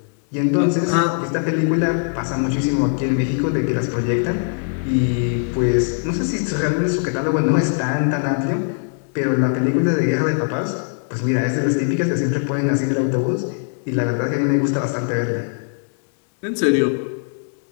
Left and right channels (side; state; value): right; silent; digital silence